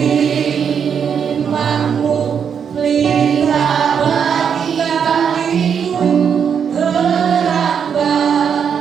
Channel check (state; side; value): quieter; left; 7.3 dB